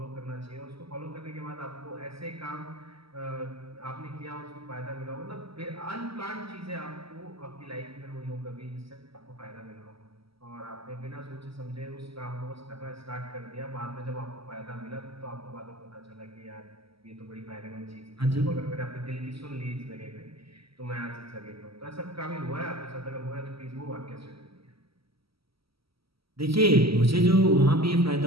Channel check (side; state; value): left; late; 0.75 ms